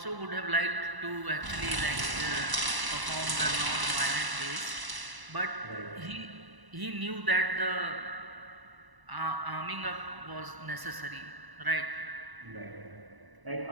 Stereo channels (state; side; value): late; left; 1.0 ms